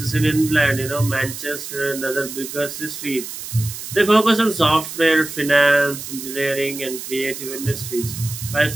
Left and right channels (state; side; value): noise; right; hiss, 9 dB below the sound